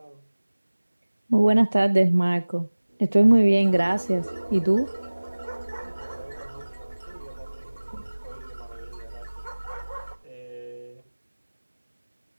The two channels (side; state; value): both; inverted; correlation -1.00